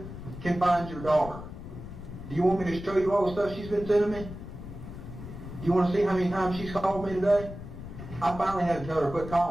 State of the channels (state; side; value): noise; left; rumble, 11 dB below the sound